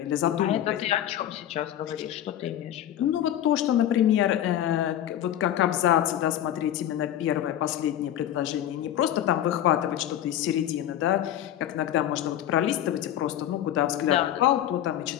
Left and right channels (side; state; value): right; quieter; 11.5 dB